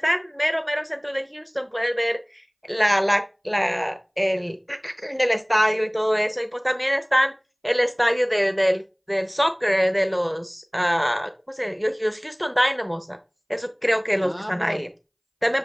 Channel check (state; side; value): identical; both; correlation 1.00